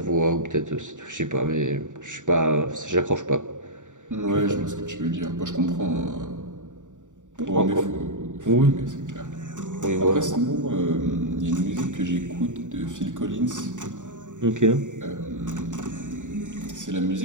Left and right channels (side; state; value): left; late; 0.86 ms